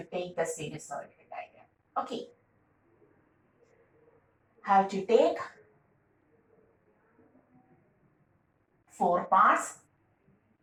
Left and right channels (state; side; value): identical; both; correlation 1.00